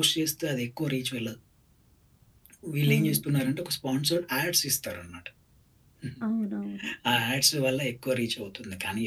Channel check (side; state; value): both; identical; correlation 1.00